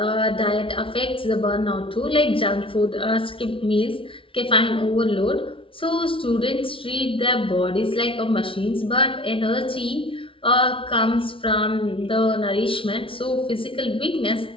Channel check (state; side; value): late; right; 0.25 ms